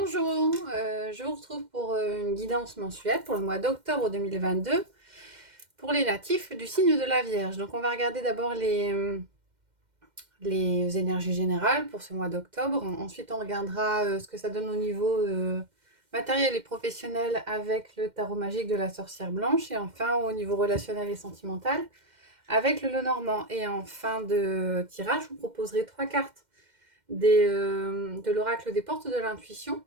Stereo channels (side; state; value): left; late; 2.1 ms